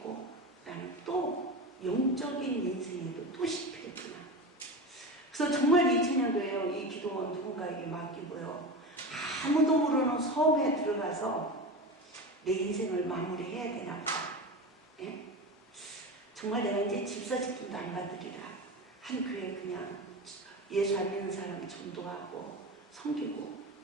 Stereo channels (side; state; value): both; normal; correlation 0.25